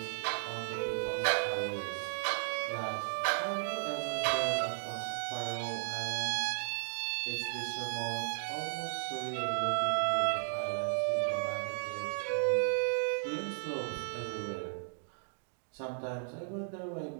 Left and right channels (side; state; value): left; silent; digital silence